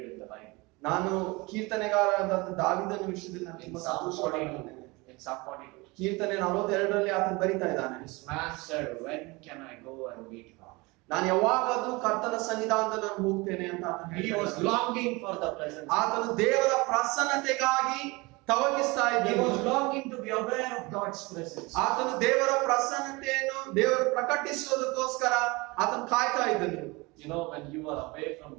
in the Bible. ನಾನು ಕೀರ್ತನೆಗಾರರಾದ ದಾವೀದನ ವಿಷಯದಲ್ಲಿ ನಾನು In ತುಂಬಾ Psalm ಸಂತೋಷವಾಗಿದ್ದೇನೆ. 42. In Psalm 42. ಕೀರ್ತನೆ 42ರಲ್ಲಿ ಆತನು ಬರಿತಾ ಇದ್ದಾನೆ, This man said, when can I go and meet God? ನಾನು ಯಾವಾಗಾದ್ರೂ ಕರ್ತನ ಸನ್ನಿಧಾನದಲ್ಲಿ ನಾನು ಹೋಗ್ತೇನೆ ಅಂತ ಆತನು He ಹೇಳ್ತಾ was ಇದ್ದಾನೆ. longing for the presence. ಆತನು ದೇವರ ಪ್ರಸನ್ನತೆಗಾಗಿ ತವಕಿಸ್ತಾ He ಇದ್ದನು. was longing to be aware of God's presence. ಆತನು ದೇವರ ಪ್ರಸನ್ನತೆಯನ್ನು ದೇವರು ಪ್ರಕಟಿಸುವುದಕ್ಕೋಸ್ಕರ ಆತನು ಕಾಯ್ತಾ ಇದ್ದನು. You know, when you are away from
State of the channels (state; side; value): quieter; left; 24.7 dB